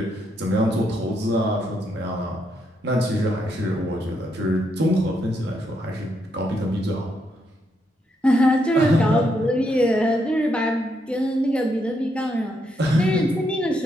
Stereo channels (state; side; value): normal; both; correlation 0.78